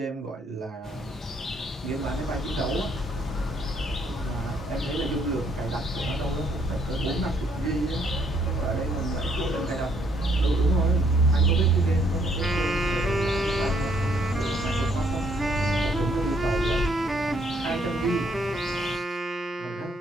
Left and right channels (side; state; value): both; normal; correlation 0.68